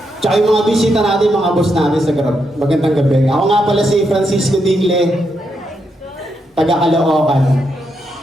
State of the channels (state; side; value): normal; both; correlation 0.81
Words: Tsaka yung mga bisita natin, mga boss natin sa Grab. Magandang gabi. Ako nga pala si Francisco Dingle, taga Caloocan.